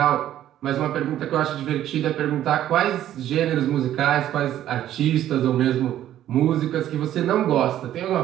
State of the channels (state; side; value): quieter; left; 12.0 dB